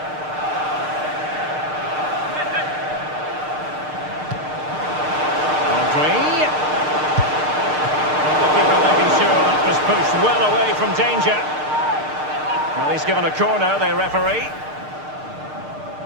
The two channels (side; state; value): left; late; 6.6 ms